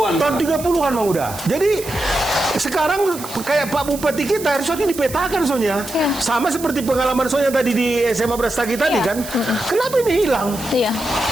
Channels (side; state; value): right; noise; hiss, 12 dB below the sound